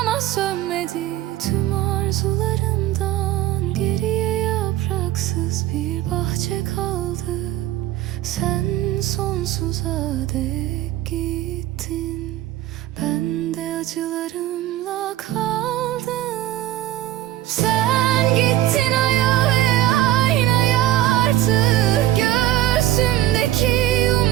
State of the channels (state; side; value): quieter; left; 14.1 dB